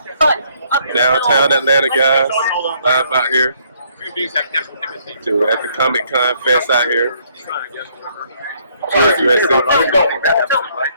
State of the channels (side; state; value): both; inverted; correlation -0.67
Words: But Downtown Atlanta guys, live out here. To at the Comic-Con Fest out here. Up until about